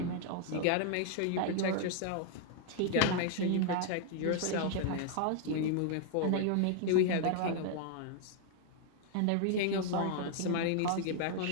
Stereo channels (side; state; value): both; different; correlation 0.00